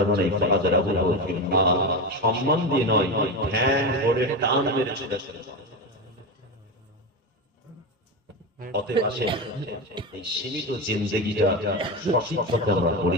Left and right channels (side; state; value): both; normal; correlation 0.18